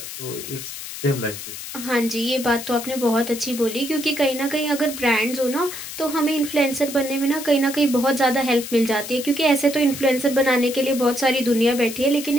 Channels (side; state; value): left; noise; hiss, 10 dB below the sound